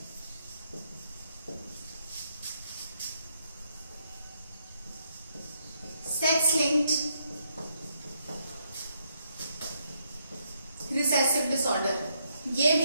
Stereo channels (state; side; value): inverted; both; correlation -0.76